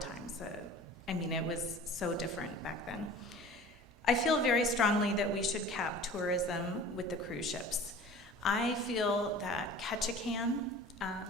I mean, it was so different back then. I feel very strongly that we should cap tourism with the cruise ships. I feel that Ketchikan,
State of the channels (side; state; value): both; normal; correlation 0.42